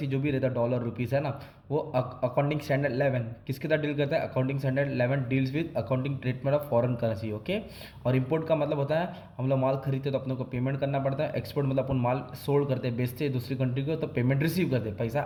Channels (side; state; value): both; identical; correlation 1.00